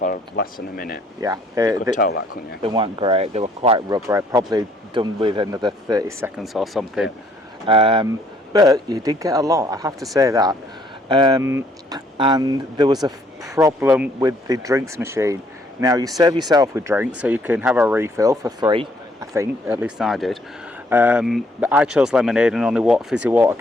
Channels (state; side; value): normal; both; correlation 0.65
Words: less than a minute. Yeah, You could tell that, couldn't you? They weren't great. They were quite rubbery. Probably done with another 30 seconds or something. But you did get a lot, I have to say that. And there was a problem with the drinks machine. Now you serve yourself with drinks, so you can have a refill for free. I think, at least I did. But I chose lemonade, and only fizzy water